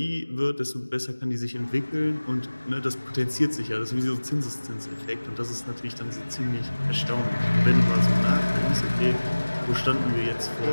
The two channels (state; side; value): inverted; both; correlation -1.00